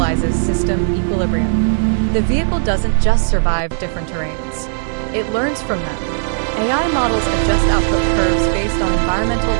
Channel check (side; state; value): left; silent; digital silence